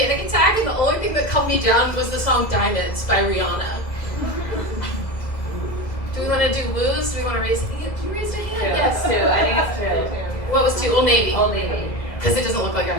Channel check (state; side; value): late; right; 2.3 ms